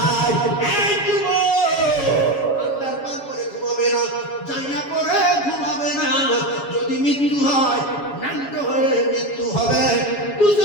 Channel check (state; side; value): late; right; 7.2 ms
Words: আল্লাহর পার করে ঘুমাবে না, জাইয়া করে ঘুমাবে না। যদি মৃত্যু হয়, ন্যান্ত হয়ে মৃত্যু হবে।